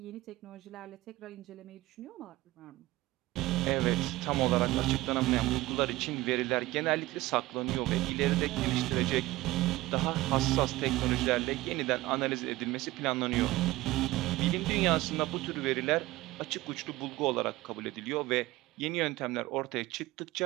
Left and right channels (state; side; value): quieter; left; 18.5 dB